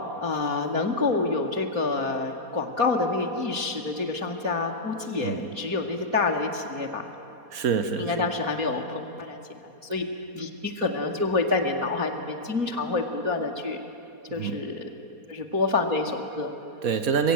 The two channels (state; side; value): late; left; 4.2 ms